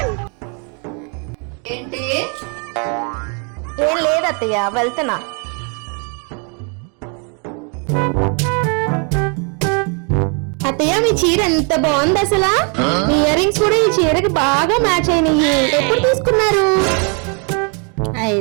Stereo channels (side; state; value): left; quieter; 37.4 dB